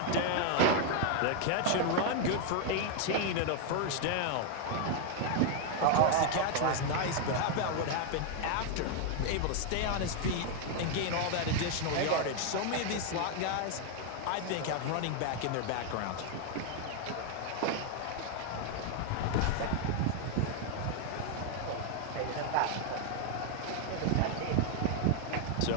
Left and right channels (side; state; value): both; different; correlation 0.00